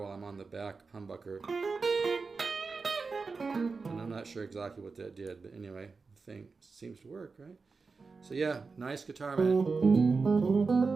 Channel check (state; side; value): quieter; left; 4.5 dB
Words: I'm on the back humbucker, and I'm not sure exactly what that did, but anyway, the thing seems to work, right? So yeah, nice guitar, man.